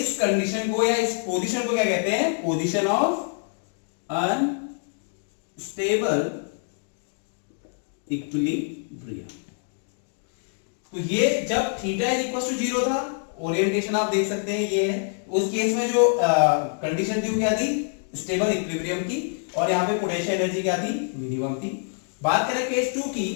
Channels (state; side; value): silent; right; 58 dB below the other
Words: कंडीशन को या इस पोजीशन को क्या कहते हैं पोजीशन ऑफ अनस्टेबल इक्विलिब्रियम। तो ये जब थीटा इज इक्वल टू 0 था, ओरिएंटेशन आप देख सकते हैं ये है, उस केस में जो कंडीशन थी वो क्या थी स्टेबल इक्विलिब्रियम की, और यहाँ पे पोटेंशियल एनर्जी क्या थी मिनिमम थी। बात करें केस 2